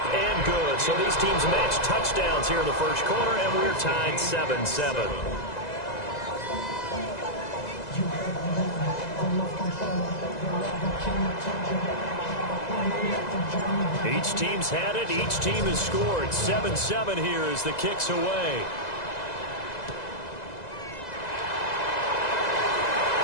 and good. So these teams match touchdowns here in the first quarter, and we're tied 7-7. Each team's had it. Each team has scored. 7-7 here as the kick's away.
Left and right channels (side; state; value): right; late; 2.0 ms